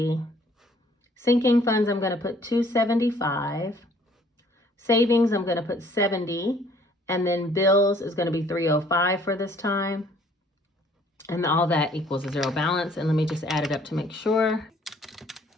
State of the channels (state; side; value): normal; both; correlation 0.59